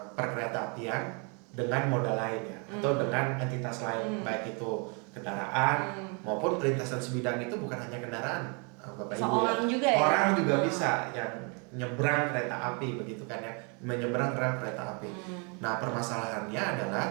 perkereta apian dengan moda lain ya, atau dengan entitas lain, baik itu kendaraan maupun perlintasan sebidang itu bukan hanya kendaraan, Bapak Ibu. Orang juga ya. Orang juga bisa yang nyebrang kereta api begitu kan ya, menyeberang rel kereta api. Nah, permasalahannya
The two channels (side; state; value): left; quieter; 34.9 dB